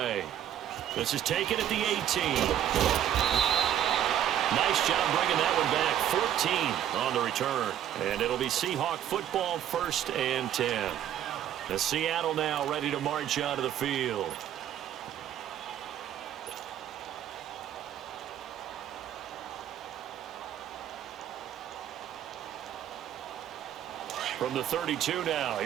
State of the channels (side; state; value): left; quieter; 10.7 dB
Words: This is taken at the 18. Nice job bringing that one back. 14 on the return. And it'll be Seahawk football, 1st and 10. The Seattle now ready to march out of the field. From the 32 now,